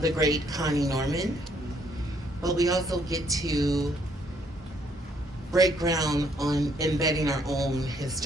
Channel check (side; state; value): both; normal; correlation 0.68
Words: the great Connie Norman, but we also get to break ground on embedding our own